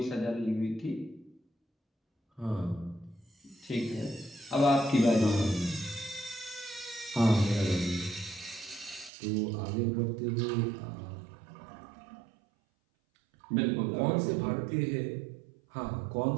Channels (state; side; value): drops out; left; at 9.1 s